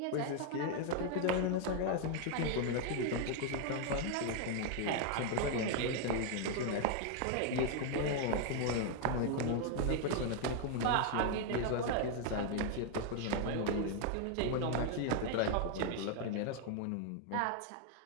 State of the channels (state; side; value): different; both; correlation 0.00